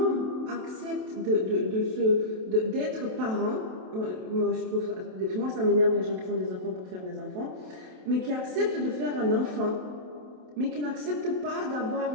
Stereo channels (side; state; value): left; late; 27 ms